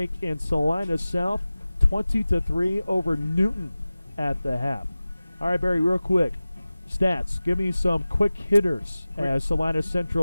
And Salina South 20-3 over Newton at the half. All right, Barry, real quick. Stats. Give me some quick hitters as Salina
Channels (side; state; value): both; inverted; correlation -0.97